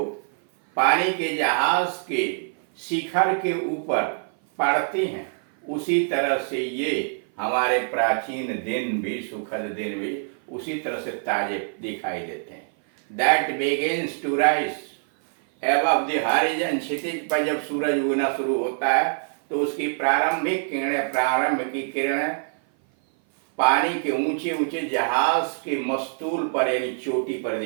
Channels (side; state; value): left; silent; 56 dB below the other